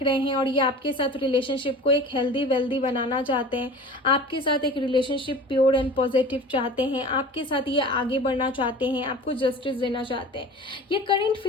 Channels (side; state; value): both; normal; correlation 0.39